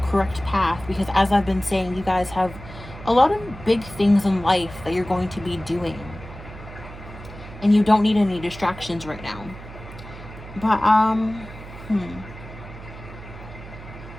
path, because as I've been saying, you guys have a lot of big things in life that you're going to be doing, and you don't need any distractions right now. But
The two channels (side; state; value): right; noise; hum, 14 dB below the sound